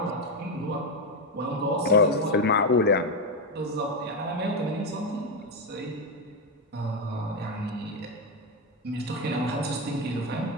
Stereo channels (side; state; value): both; normal; correlation 0.08